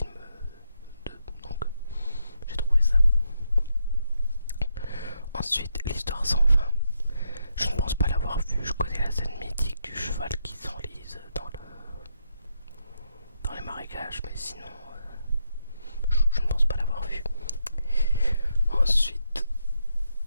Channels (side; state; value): both; inverted; correlation -0.80